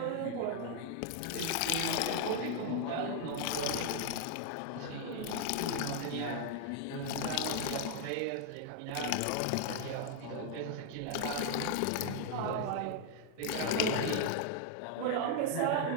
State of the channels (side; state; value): both; different; correlation 0.00